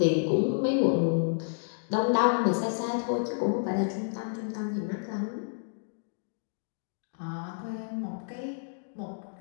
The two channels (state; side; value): silent; right; digital silence